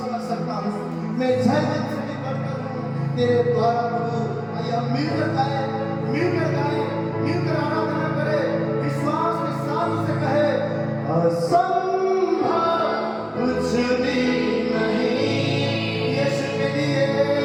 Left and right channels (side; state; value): both; identical; correlation 1.00